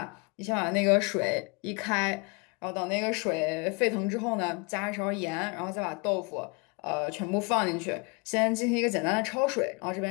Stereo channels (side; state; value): right; quieter; 30.9 dB